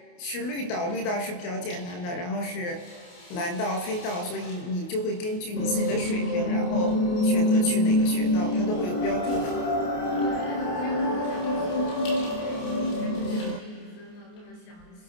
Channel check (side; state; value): right; late; 28 ms